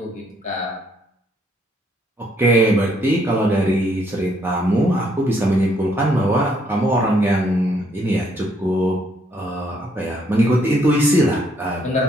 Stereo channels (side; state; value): both; normal; correlation 0.69